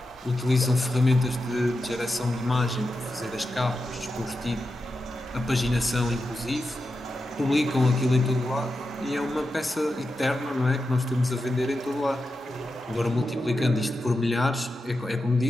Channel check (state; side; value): normal; both; correlation 0.89